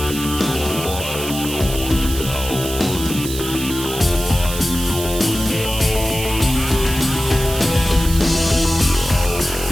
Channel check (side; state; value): right; noise; hiss, 8 dB below the sound